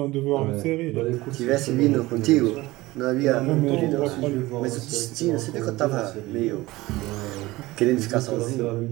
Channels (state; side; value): quieter; left; 19.5 dB